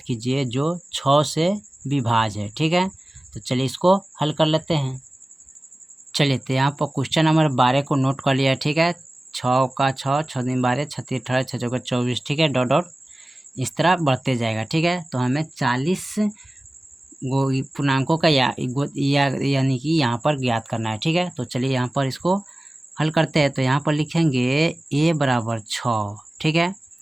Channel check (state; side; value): normal; both; correlation 0.97